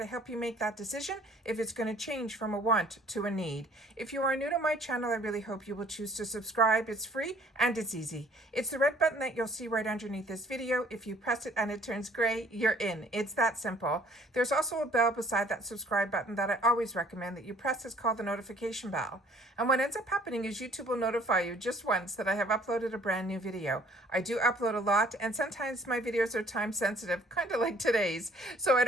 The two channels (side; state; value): both; normal; correlation 0.58